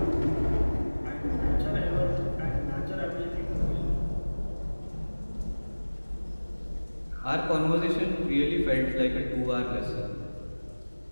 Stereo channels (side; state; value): both; inverted; correlation -1.00